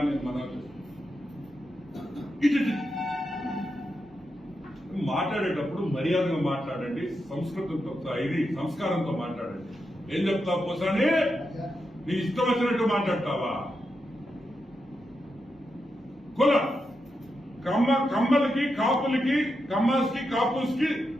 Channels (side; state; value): both; normal; correlation 0.86